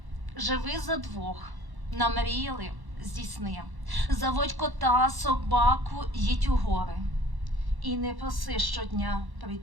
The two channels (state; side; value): late; left; 1.1 ms